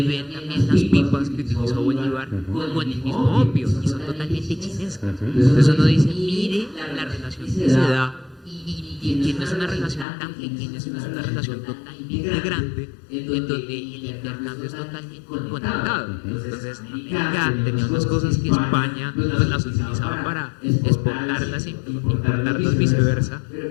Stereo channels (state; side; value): drops out; right; at 10.1 s